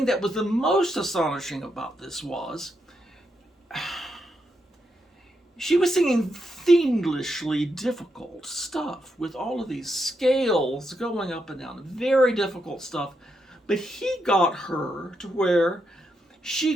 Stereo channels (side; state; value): both; normal; correlation 0.82